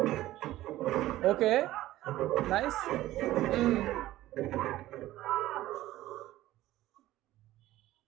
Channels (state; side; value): quieter; left; 15.4 dB